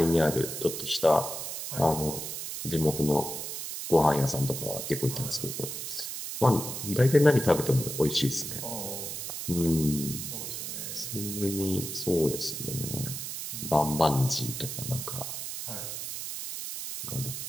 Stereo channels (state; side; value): noise; right; hiss, 6 dB below the sound